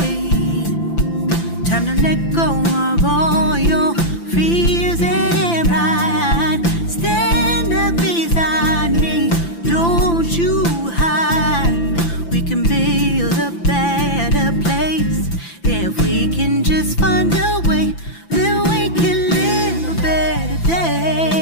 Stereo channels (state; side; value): late; right; 5.9 ms